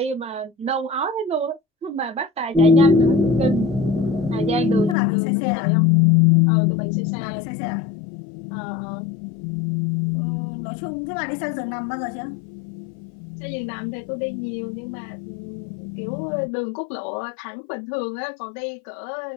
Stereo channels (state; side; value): drops out; right; at 5.0 s